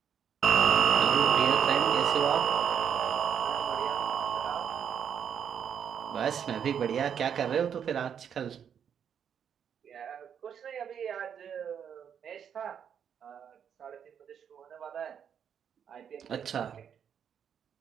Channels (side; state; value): left; quieter; 8.1 dB